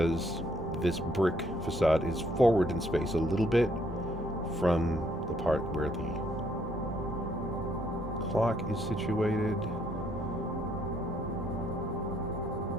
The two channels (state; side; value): normal; both; correlation 0.69